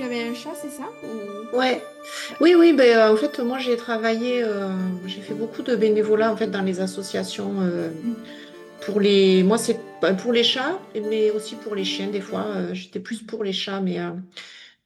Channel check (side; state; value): both; identical; correlation 1.00